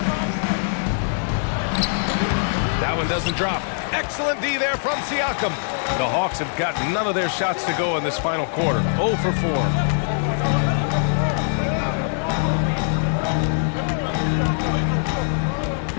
That one doesn't drop. Excellent D there from Siakam. The Hawks have got none of their shots to go in this final quarter. 0 for 4.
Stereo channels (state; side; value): silent; right; digital silence